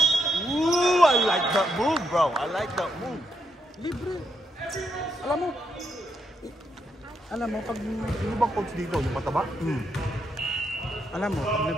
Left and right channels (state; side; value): normal; both; correlation 0.79